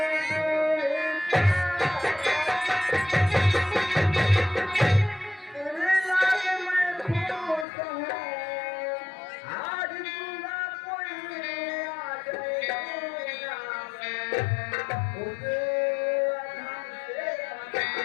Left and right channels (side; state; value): right; drops out; at 7.7 s